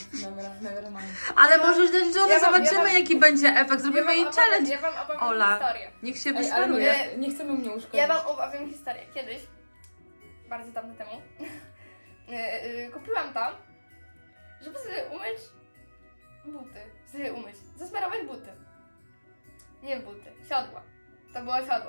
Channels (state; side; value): inverted; both; correlation -1.00